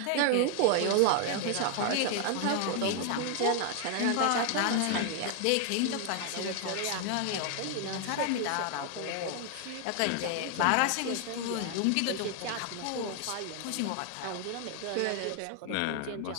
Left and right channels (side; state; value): both; different; correlation 0.00